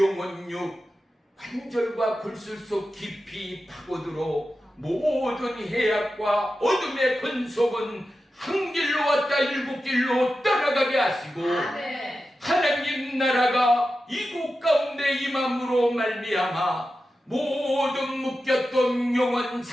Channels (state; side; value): normal; both; correlation 0.92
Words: 관절과 골술 속 깊이 파고들어 모든 해악과 어둠의 권속은 한 길로 왔다 일곱 길로 떠나가게 하시고 하나님 나라가 이곳 가운데 임함으로 말미암아 모든 묶였던 영혼